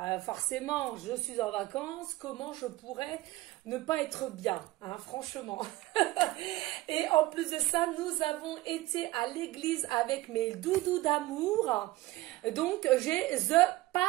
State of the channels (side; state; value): left; quieter; 17.9 dB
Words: Forcément, je suis en vacances. Comment je pourrais ne pas être bien, hein, franchement. Et en plus de ça, nous avons été à l'église avec mes doudous d'amour. Donc, j'ai the